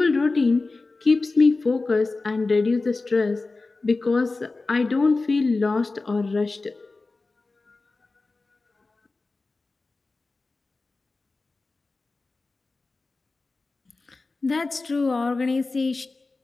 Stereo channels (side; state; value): right; quieter; 3.6 dB